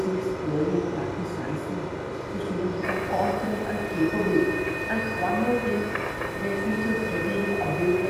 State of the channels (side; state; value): both; identical; correlation 1.00